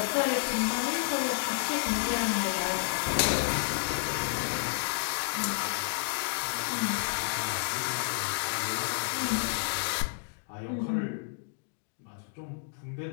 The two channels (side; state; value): right; silent; digital silence